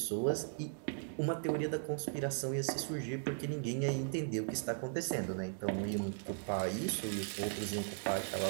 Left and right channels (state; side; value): silent; left; digital silence